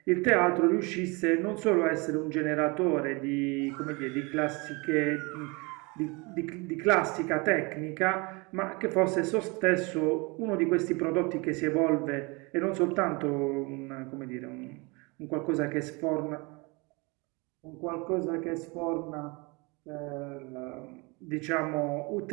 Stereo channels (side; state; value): left; quieter; 27.7 dB